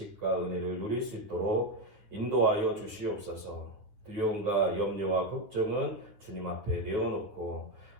은혜를 누릴 수 있도록 인도하여 주시옵소서. 두려움과 염려와 걱정은 주님 앞에 내어놓고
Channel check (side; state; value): left; late; 9.4 ms